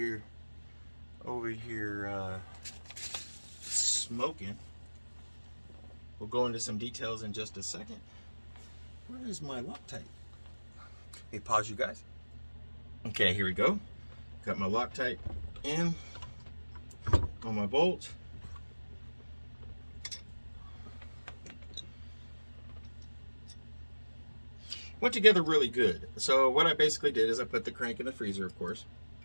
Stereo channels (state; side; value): inverted; both; correlation -1.00